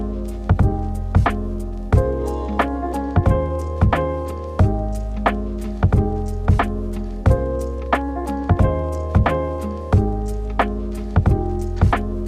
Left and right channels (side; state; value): both; identical; correlation 1.00